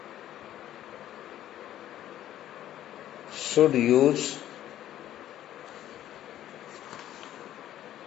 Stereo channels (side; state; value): right; quieter; 12.3 dB